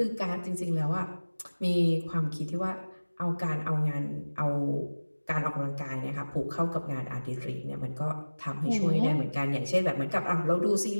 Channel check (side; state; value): both; inverted; correlation -1.00